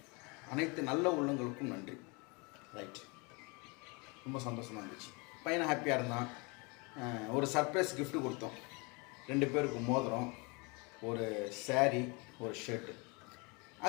அனைத்து நல்ல உள்ளங்களுக்கும் நன்றி. ரைட், ரொம்ப சந்தோஷமாக இருந்துச்சு. பையனை ஹாப்பியாக இருந்தான். ஒரு சர்ப்ரைஸ் கிஃப்ட்டு கொடுத்தோம். 2 பேருக்கு மோதிரம், ஒரு சாரீ, ஒரு ஷர்ட்டு.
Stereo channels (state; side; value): quieter; right; 29.3 dB